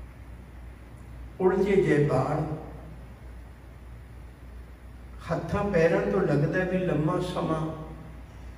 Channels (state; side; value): identical; both; correlation 1.00